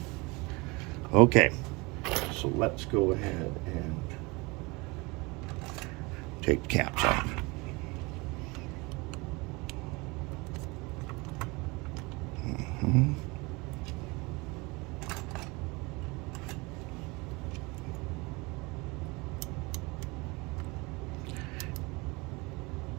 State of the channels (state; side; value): quieter; left; 26.0 dB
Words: Okay, so let's go ahead and take the caps off.